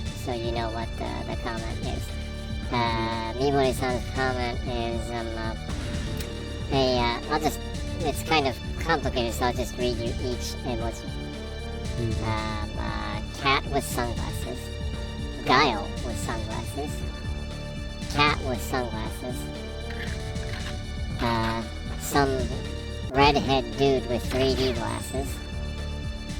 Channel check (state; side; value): identical; both; correlation 1.00